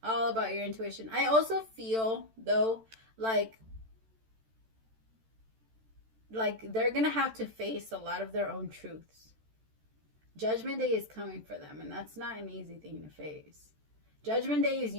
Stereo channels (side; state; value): left; late; 13 ms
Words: All about your intuition. I also feel, though, like they're going to have to face a lot of their own truths. Judgment Day is coming for them, and that's not an easy thing to face. Judgment Day is